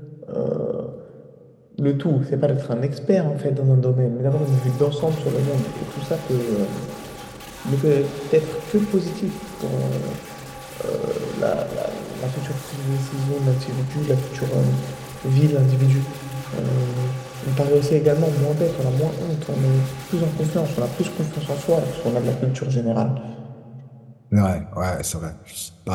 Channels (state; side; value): identical; both; correlation 1.00